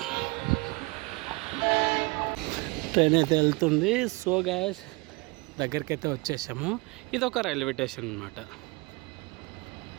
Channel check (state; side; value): quieter; left; 26.1 dB